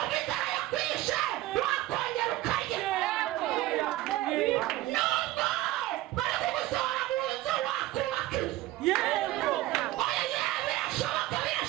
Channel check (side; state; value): left; quieter; 16.4 dB